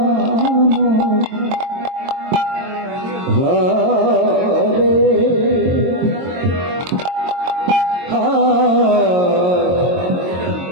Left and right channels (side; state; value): left; late; 22 ms